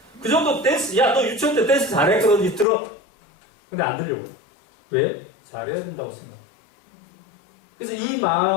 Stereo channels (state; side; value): drops out; right; at 2.7 s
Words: 그 정도 댄스, 야, 너 유치원 때 댄스 잘했거든, 들어. 근데 안 들려고. 왜? 잘해야 된다고 생각. 그래서 이